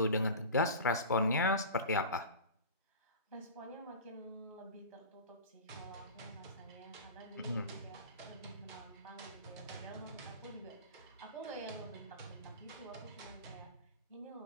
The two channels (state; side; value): inverted; both; correlation -0.34